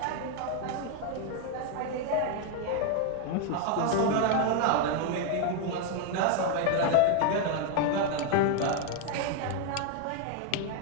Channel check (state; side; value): different; both; correlation 0.01